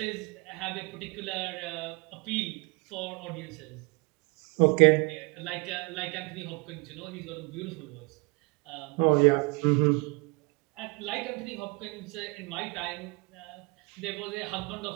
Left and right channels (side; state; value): left; quieter; 28.7 dB